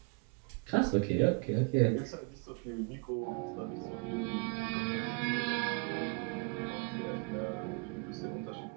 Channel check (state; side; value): quieter; left; 33.9 dB